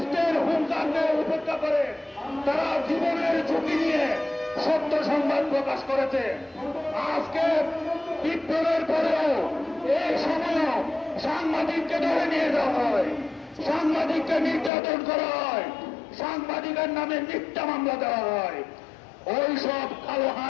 হুঙ্কারকে উপেক্ষা করে তারা জীবনের ঝুঁকি নিয়ে সত্য সংবাদ প্রকাশ করেছে। আজকে বিপ্লবের পরেও এই সময় সাংবাদিককে ধরে নিয়ে যাওয়া হয়, সাংবাদিককে নির্যাতন করা হয়, সাংবাদিকের নামে মিথ্যা মামলা দেওয়া হয়। ওই সব কালো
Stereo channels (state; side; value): drops out; right; at 14.7 s